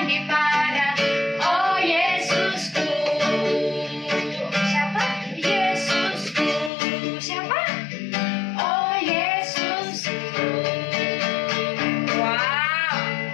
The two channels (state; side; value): drops out; right; at 6.7 s